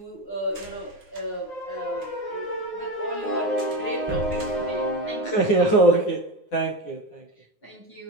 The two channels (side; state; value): right; late; 9.7 ms